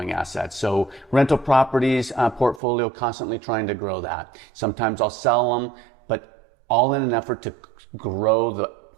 assets. So rental properties portfolio, constantly trying to grow that. Sometimes I'll sell them, but all in an effort to grow the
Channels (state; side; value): drops out; left; at 2.6 s